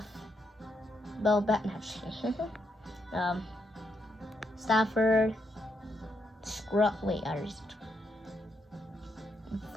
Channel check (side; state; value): both; normal; correlation 0.79